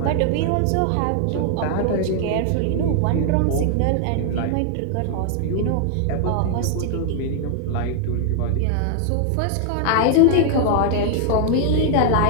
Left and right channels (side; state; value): both; different; correlation 0.00